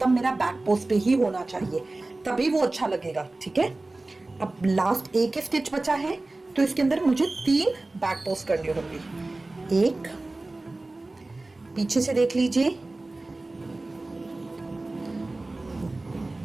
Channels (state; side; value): quieter; left; 3.0 dB